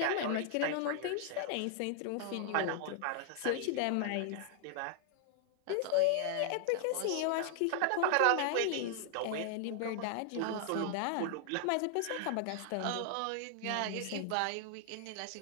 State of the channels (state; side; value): different; both; correlation 0.00